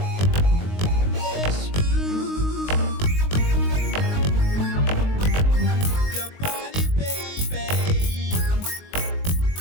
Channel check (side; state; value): right; late; 19 ms